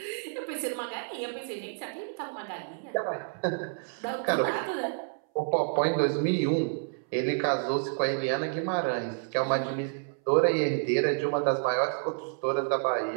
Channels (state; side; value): silent; left; 58 dB below the other